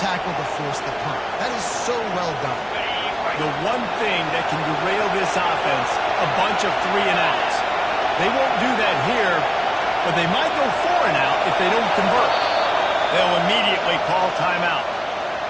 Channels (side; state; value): both; identical; correlation 1.00